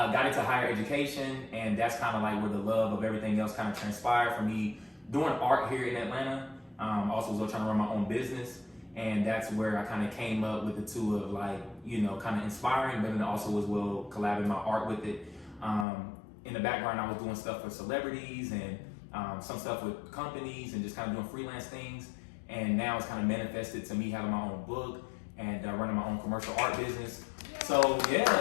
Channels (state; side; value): drops out; right; at 15.9 s